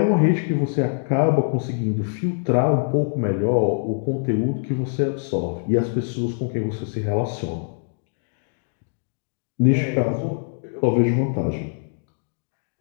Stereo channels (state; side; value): silent; right; digital silence